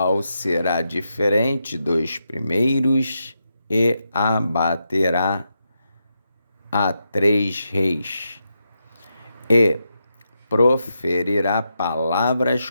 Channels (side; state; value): both; inverted; correlation -0.85